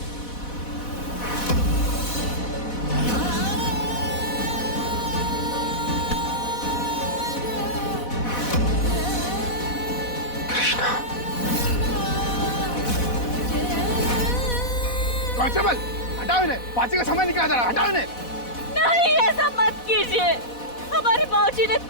कांस्टेबल, हटाओ इन्हें। फांसी का समय निकला जा रहा है, हटाओ इन्हें। नहीं, ऐसा मत कीजिए। हमारे बाबूजी ने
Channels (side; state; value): right; late; 4.1 ms